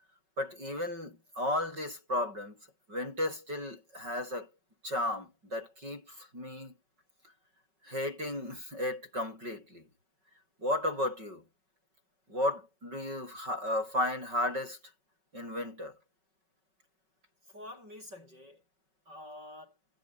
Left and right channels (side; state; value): left; late; 5.3 ms